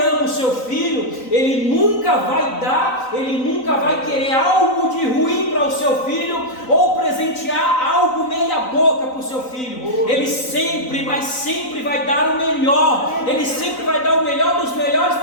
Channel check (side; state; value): right; late; 3.9 ms